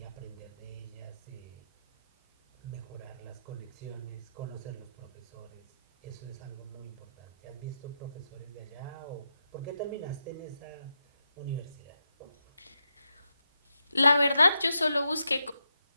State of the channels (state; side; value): inverted; both; correlation -0.86